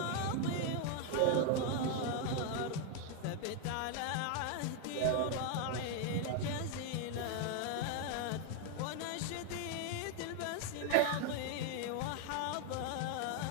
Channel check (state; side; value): different; both; correlation 0.01